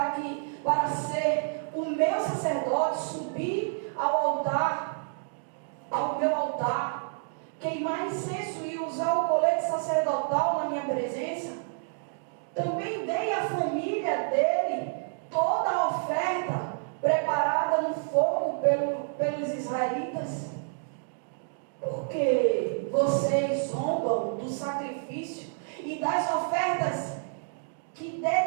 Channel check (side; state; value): left; silent; digital silence